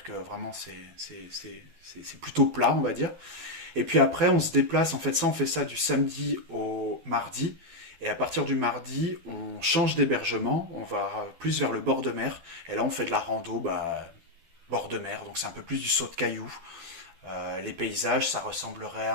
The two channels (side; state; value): left; late; 12 ms